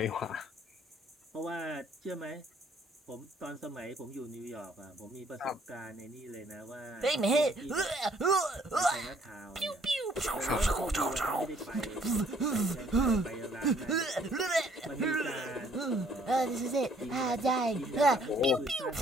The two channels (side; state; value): both; normal; correlation 0.62